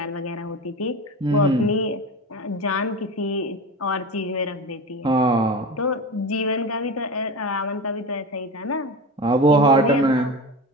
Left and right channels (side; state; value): both; normal; correlation 0.28